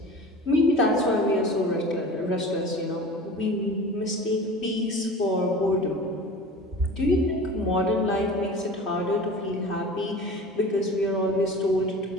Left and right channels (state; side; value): normal; both; correlation 0.38